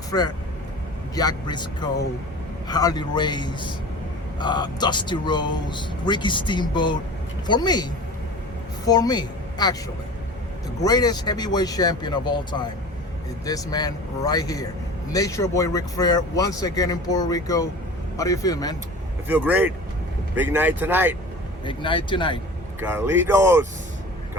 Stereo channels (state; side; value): normal; both; correlation 0.38